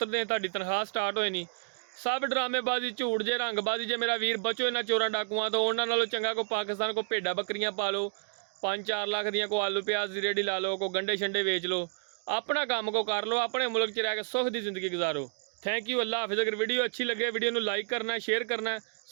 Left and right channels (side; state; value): left; silent; digital silence